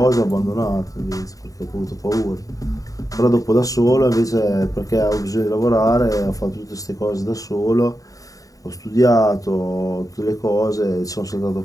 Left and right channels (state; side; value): late; right; 0.17 ms